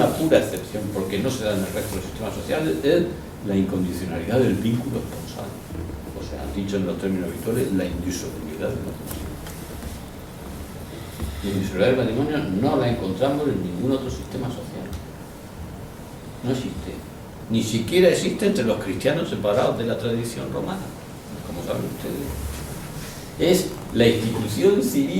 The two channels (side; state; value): both; identical; correlation 1.00